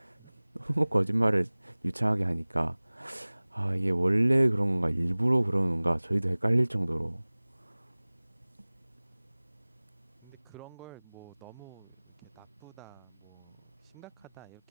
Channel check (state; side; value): inverted; both; correlation -1.00